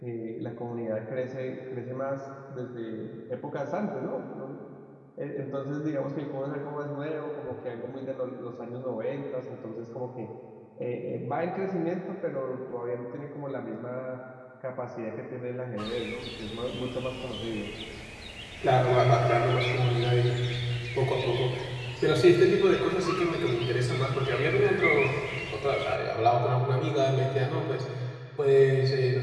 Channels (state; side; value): identical; both; correlation 1.00